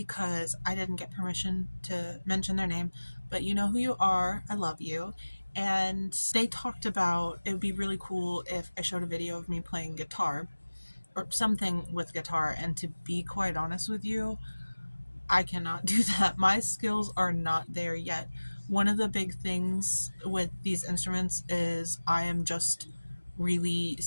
I didn't get permission to mention their name, but you know who you are. I love you. And they talked about it would be really cool if I showed a video of me playing guitar or something with guitar. And to be quite honest with you, I cannot do that. My skills are not there yet. One of the big things with these instruments is I am just really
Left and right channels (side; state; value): both; inverted; correlation -1.00